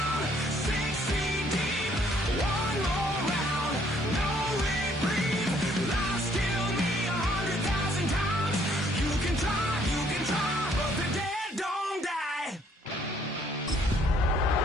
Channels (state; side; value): normal; both; correlation 0.64